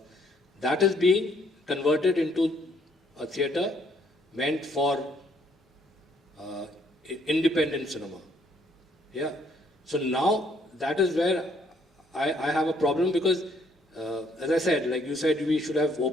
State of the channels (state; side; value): normal; both; correlation 0.67